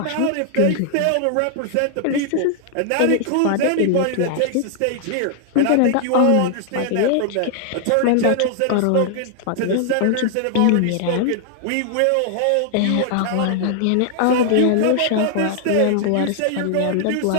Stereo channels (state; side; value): different; both; correlation -0.01